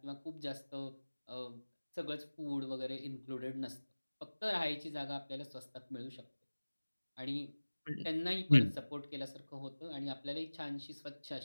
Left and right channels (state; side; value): inverted; both; correlation -1.00